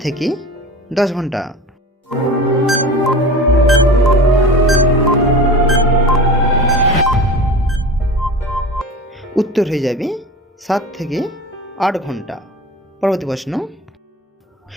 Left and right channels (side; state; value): both; normal; correlation 0.34